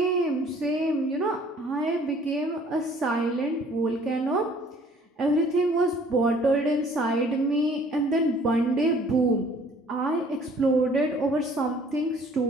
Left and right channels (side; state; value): both; normal; correlation 0.56